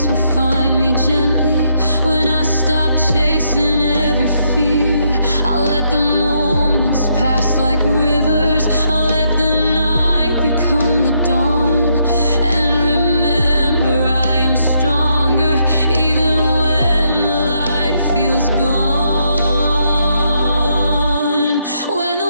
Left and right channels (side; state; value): both; inverted; correlation -0.76